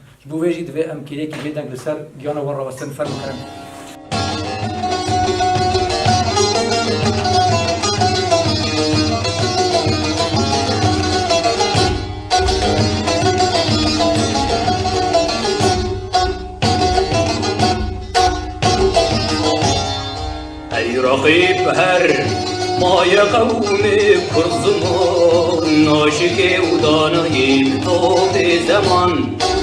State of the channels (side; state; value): both; identical; correlation 1.00